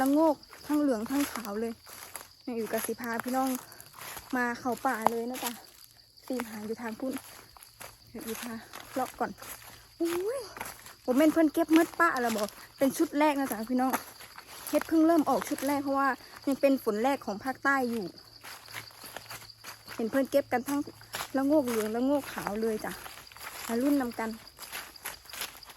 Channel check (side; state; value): both; identical; correlation 1.00